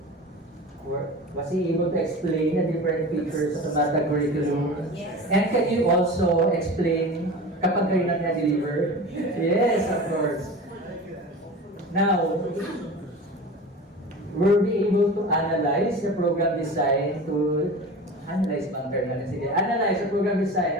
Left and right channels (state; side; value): normal; both; correlation 0.34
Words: explain the different features of the MATATAG curriculum? Yes. And can you also explain kapag kayo na-deliver? Yes, of course. Now, were we able to analyze the program design analyze the program